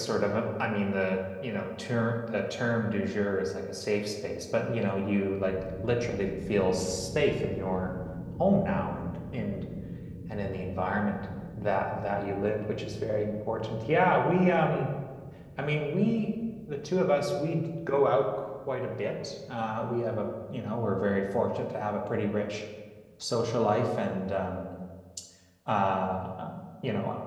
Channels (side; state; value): both; identical; correlation 1.00